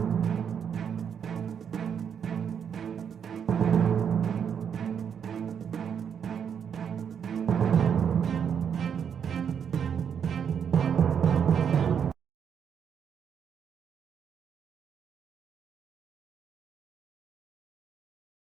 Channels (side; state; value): left; quieter; 7.7 dB